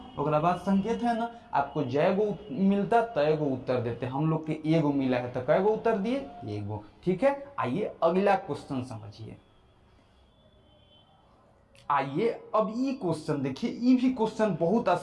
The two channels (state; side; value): identical; both; correlation 1.00